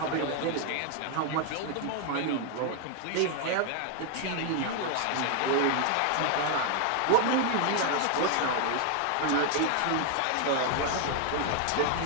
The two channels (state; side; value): different; both; correlation 0.00